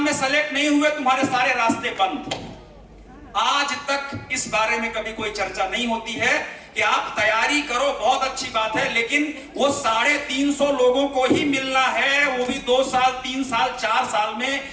में सेलेक्ट नहीं हुए, तुम्हारे सारे रास्ते बंद। आज तक इस बारे में कभी कोई चर्चा नहीं होती है कि आप तैयारी करो, बहुत अच्छी बात है, लेकिन वो 350 लोगों को ही मिलना है, वो भी 2 साल, 3 साल, 4 साल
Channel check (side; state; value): both; identical; correlation 1.00